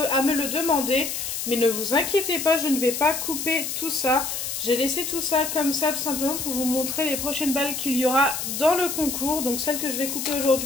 à me le demander, mais ne vous inquiétez pas, je ne vais pas couper tout ça. J'ai laissé tout ça comme ça tout simplement pour vous montrer les prochaines balles qu'il y aura dans le concours. Donc celle que je vais couper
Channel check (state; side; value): noise; left; hiss, 4 dB below the sound